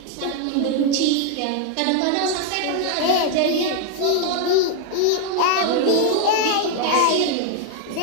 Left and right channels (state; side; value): different; both; correlation 0.00